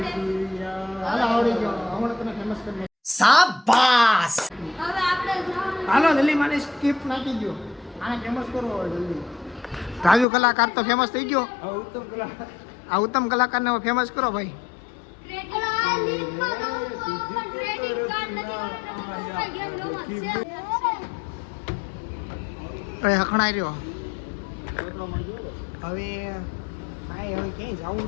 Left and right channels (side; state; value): right; drops out; at 10.2 s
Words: હાલો આવડી ગયો. હમણાં તમે ફેમસ કરી હાલો જલ્દી માને સ્કીપ નાખી દો. આને ફેમસ કરો હવે જલ્દી. રાજુ કલાકાર તો ફેમસ થઈ ગયો. આ ઉત્તમ કલા આ ઉત્તમ કલાકારને હવે ફેમસ કરો ભાઈ. અરે હખણાઈ રહ્યો. હવે કાંઈ હવે ક્યાંય જવું